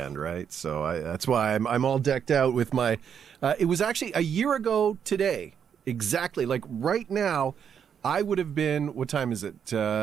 right? So that's why I'm all decked out with my. It was actually a year ago today, exactly. Like right now, I would have been. What time is it?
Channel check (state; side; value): quieter; left; 7.9 dB